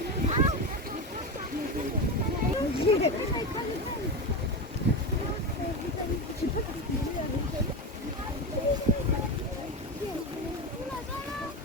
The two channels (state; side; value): normal; both; correlation 0.19